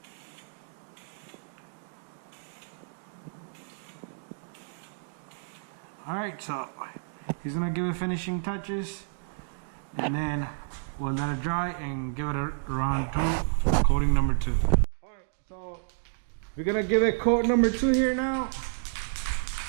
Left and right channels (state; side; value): silent; left; digital silence